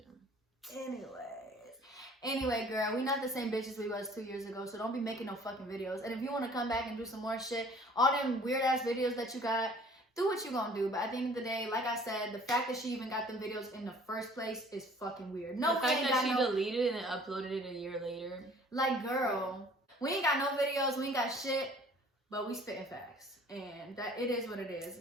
Anyway, girl, we not the same bitches we was 2 years ago, so don't be making no fucking videos. And if you want to come back and do some more shit, all them weird ass videos that you got, do what you gonna do. But at the end of the day, like I said, the fact that she even got them videos in the first place is fucking weird. No, the fact that she deleted it and uploaded it a year later. Like, girl, we ain't got no videos, we ain't got shit, but we spitting facts, and that it is what it is.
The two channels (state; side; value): normal; both; correlation 0.53